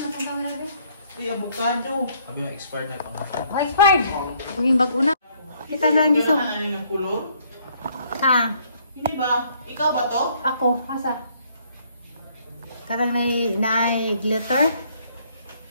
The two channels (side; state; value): both; inverted; correlation -0.66